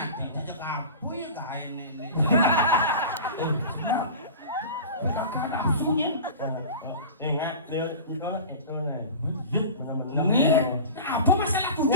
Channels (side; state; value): both; inverted; correlation -0.34